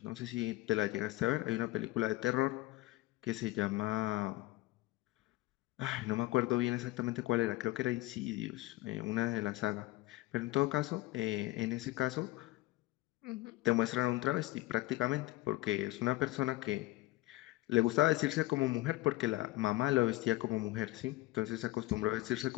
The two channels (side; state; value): right; quieter; 18.7 dB